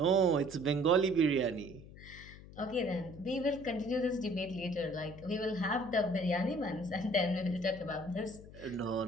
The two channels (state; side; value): noise; left; hum, 17 dB below the sound